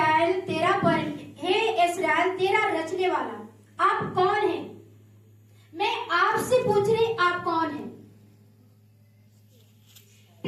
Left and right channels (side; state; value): both; identical; correlation 1.00